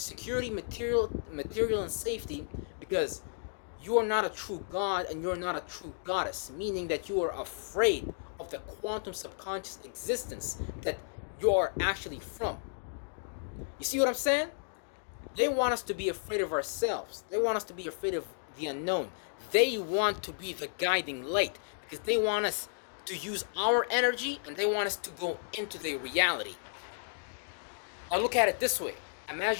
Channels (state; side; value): silent; right; digital silence